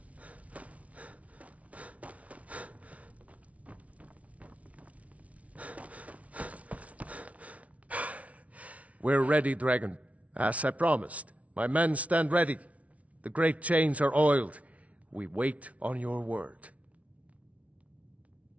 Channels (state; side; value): late; left; 0.066 ms